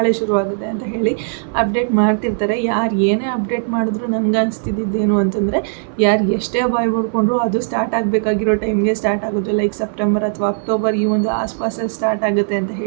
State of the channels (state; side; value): silent; left; 60 dB below the other